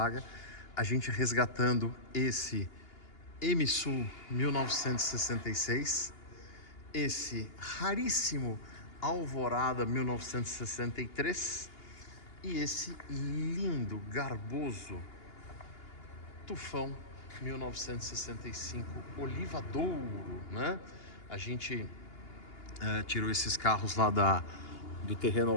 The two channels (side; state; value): right; late; 2.8 ms